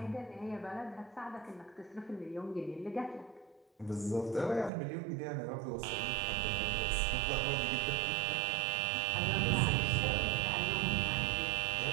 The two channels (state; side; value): drops out; left; at 4.7 s